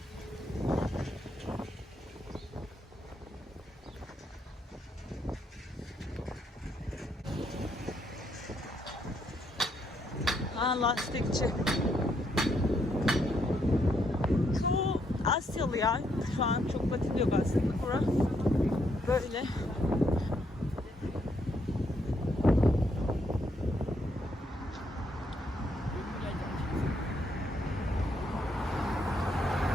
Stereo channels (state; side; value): normal; both; correlation 0.75